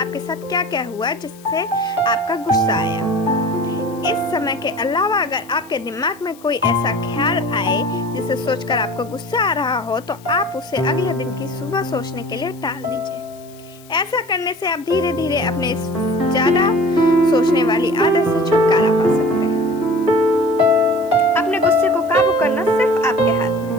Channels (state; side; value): noise; left; hiss, 24 dB below the sound